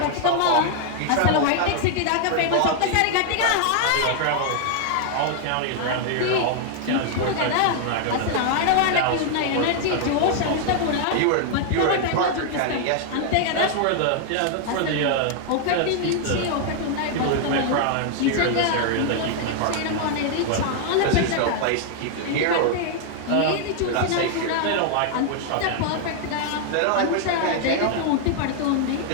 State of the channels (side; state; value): both; different; correlation 0.00